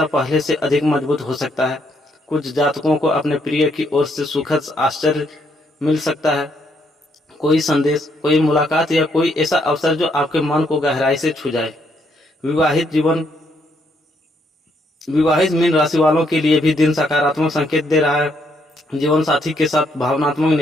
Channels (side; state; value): both; normal; correlation 0.73